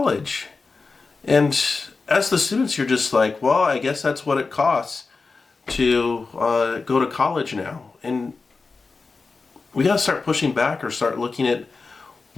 And as the students, you're just like, well, I guess that's what it costs to go to college now. And we got to start pushing back or start looking at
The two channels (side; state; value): right; quieter; 4.2 dB